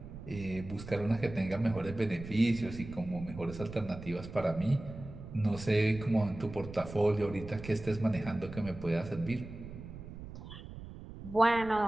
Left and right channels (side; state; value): right; noise; rumble, 12 dB below the sound